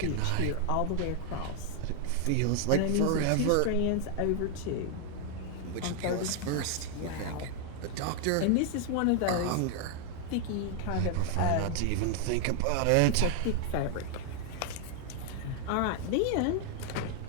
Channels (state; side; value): different; both; correlation 0.00